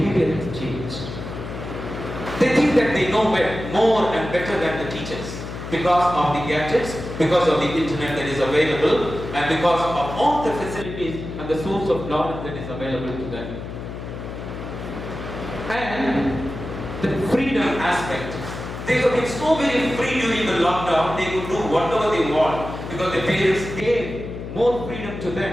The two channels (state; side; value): noise; left; hum, 9 dB below the sound